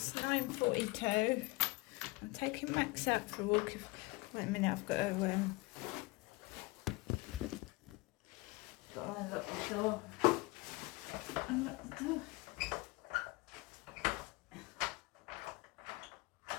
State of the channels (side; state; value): right; quieter; 23.0 dB